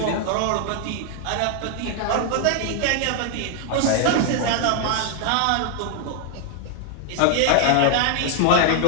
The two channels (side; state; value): both; different; correlation 0.00